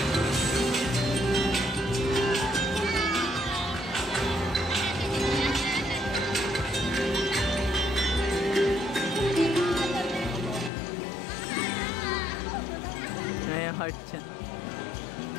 May heart siya.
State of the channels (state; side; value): drops out; right; at 10.7 s